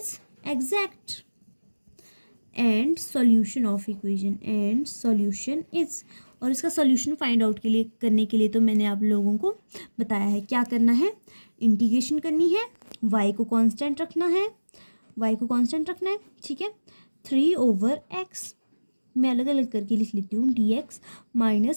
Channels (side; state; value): both; inverted; correlation -1.00